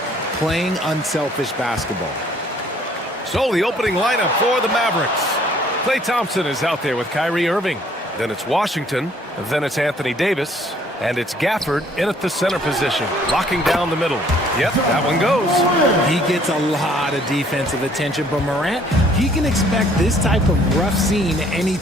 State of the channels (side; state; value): both; normal; correlation 0.60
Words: playing unselfish basketball. So the opening lineup for the Mavericks. Klay Thompson is out there with Kyrie Irving. Then it's Washington. Then it's Anthony Davis. And it's Gafford in at the center position, locking down the middle. Yep, that one goes. He gets a lot of defensive attention, but Morant, he can expect this type of rough scene